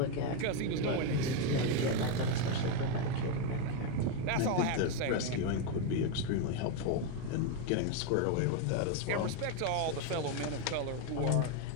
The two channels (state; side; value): different; both; correlation 0.02